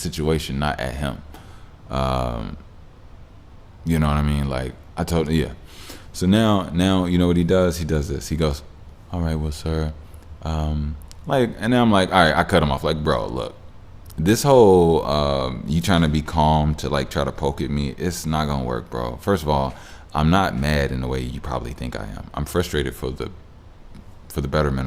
not at him. You know what I mean? Like I told him, yeah. So now you know what he does? He does this. He goes, all right, well, sir, and then I'm like, all right, I cut him off. Like, bro, look, this whole you trying to be calm to try to poke at me, it's not gonna work, bro. First of all, I'm not mad in the way you probably think I am. I'm frustrated for the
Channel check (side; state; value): both; identical; correlation 1.00